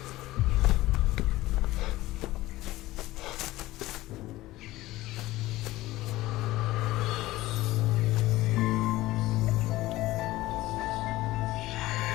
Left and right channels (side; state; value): right; quieter; 17.5 dB